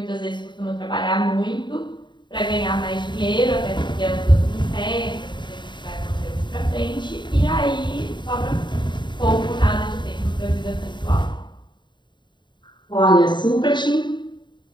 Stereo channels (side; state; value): right; late; 0.22 ms